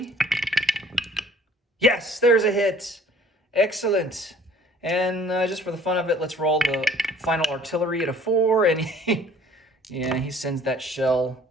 Yes, there's a hit. Excellent. And just for the fun of it, let's roll the final artillery at a 4. And he sends that shell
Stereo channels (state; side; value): normal; both; correlation 0.53